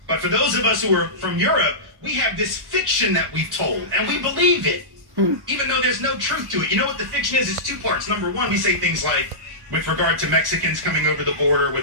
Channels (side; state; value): left; late; 1.1 ms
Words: But for those of us who are from Europe, we have this fiction that we've told, and we believe it, even though there's no truth to it. You know what the fiction is? It's two parts. Number one, we say things like, with regard to Mexicans coming over the border,